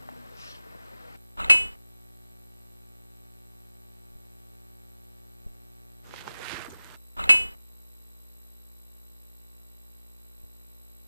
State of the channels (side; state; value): both; inverted; correlation -0.98